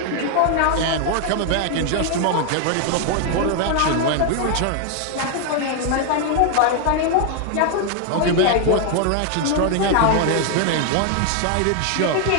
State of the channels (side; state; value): both; different; correlation 0.00